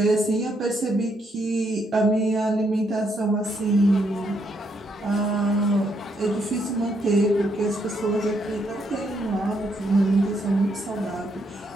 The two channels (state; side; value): normal; both; correlation 0.75